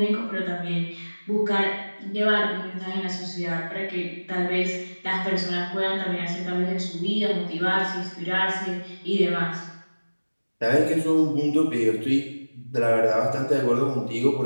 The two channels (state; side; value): inverted; both; correlation -1.00